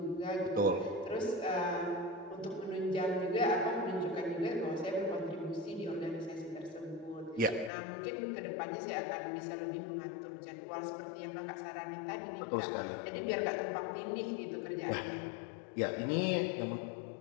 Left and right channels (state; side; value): drops out; right; at 7.7 s